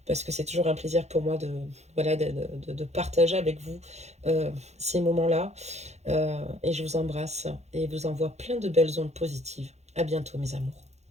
parce que c'est toujours un plaisir pour moi voilà, de partager avec vous ces moments-là. Et je vous embrasse et vous envoie plein de belles ondes positives. À bientôt, mes amours.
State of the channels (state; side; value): late; left; 0.32 ms